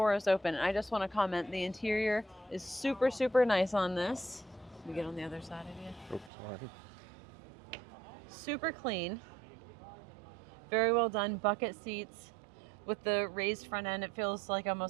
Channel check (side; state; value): left; drops out; at 6.3 s